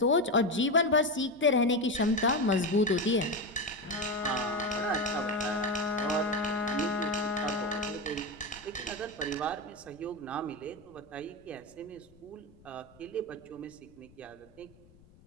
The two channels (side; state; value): left; noise; rumble, 26 dB below the sound